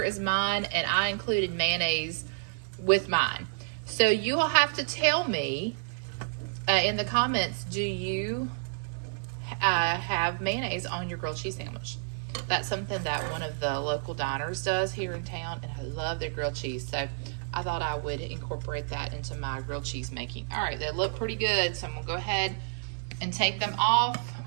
is mine, and I included mayonnaise with mine. So you will have to tell me in the comments, do you have mayonnaise on your grilled cheese sandwich? That's something that one of the local diners does here in town, and I love their grilled cheese. So I thought I would incorporate that into my grilled cheese making. All right, they look pretty good, so I'm gonna go ahead and take them off,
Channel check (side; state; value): left; silent; 58 dB below the other